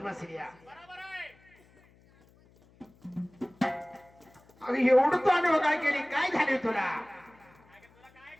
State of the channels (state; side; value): noise; left; hum, 29 dB below the sound